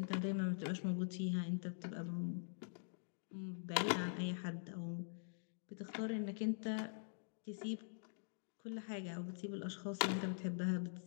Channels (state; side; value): silent; right; digital silence